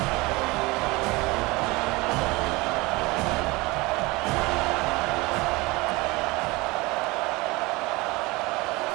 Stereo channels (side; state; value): left; quieter; 23.2 dB